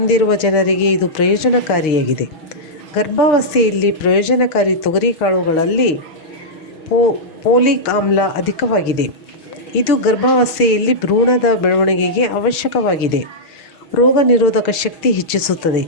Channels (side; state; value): right; late; 6.3 ms